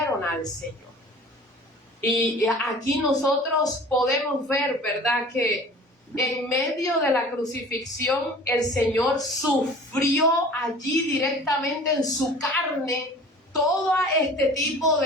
al Señor. Y aquí nosotros podemos ver, ¿verdad?, que en medio de la crucifixión el Señor sufrió allí directamente en su carne todo este tipo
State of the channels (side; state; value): both; normal; correlation 0.44